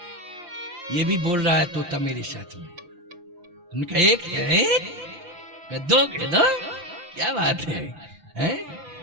ये भी बोल रहा है तोता मेरे साथ में। उनका 1 है, 2 कह दो, क्या बात है?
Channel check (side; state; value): left; late; 5.7 ms